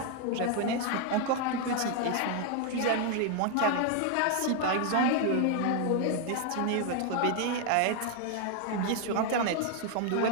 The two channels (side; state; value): both; different; correlation 0.00